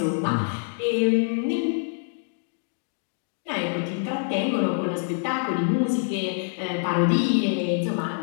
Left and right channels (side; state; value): right; silent; digital silence